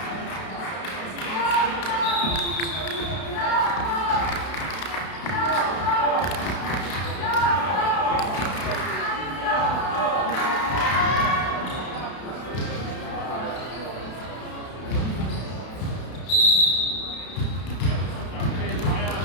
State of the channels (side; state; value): right; late; 32 ms